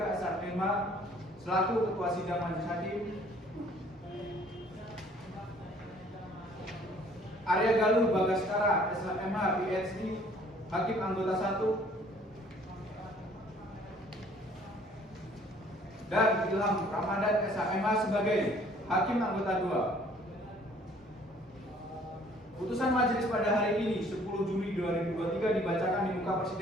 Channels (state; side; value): normal; both; correlation 0.57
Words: SHMH selaku Ketua Sidang Majelis Hakim. Arya Galuh Bagaskara SHMH PhD Hakim Anggota 1 dan Ilham Ramadan SHMH sebagai Hakim Anggota 2. Putusan majelis pada hari ini 10 Juli 2023 dibacakan di muka